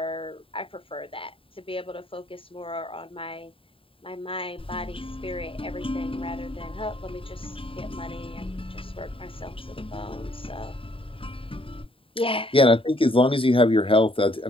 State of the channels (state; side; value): late; right; 0.26 ms